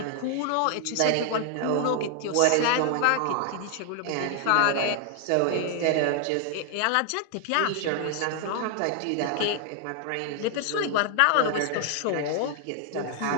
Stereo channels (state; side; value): different; both; correlation 0.00